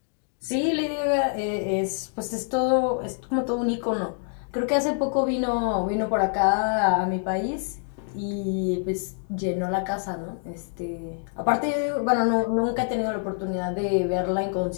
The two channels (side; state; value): right; silent; 61 dB below the other